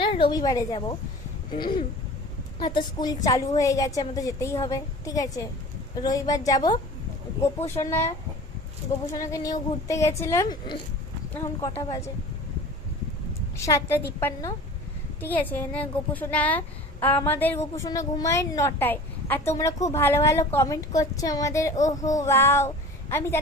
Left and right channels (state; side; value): normal; both; correlation 0.40